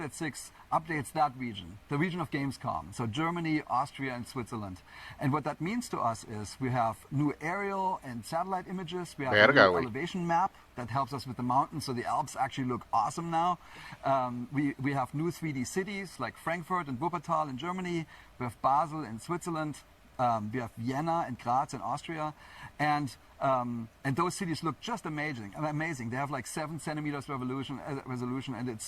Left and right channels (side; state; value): both; identical; correlation 1.00